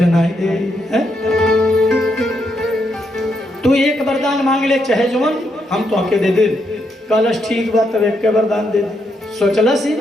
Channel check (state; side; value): normal; both; correlation 0.79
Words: नाई दे है? तू एक वरदान मांग ले चाहे जवन हम तो हके दे दे। कहलस ठीक बा तब एक वरदान दे दे। सोचलस ही